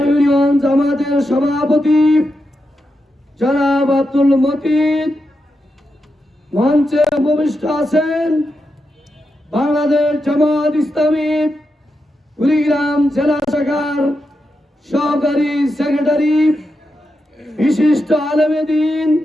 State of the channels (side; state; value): both; normal; correlation 0.87